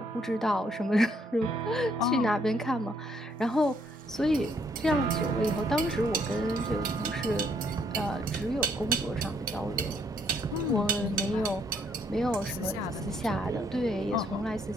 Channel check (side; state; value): both; normal; correlation 0.69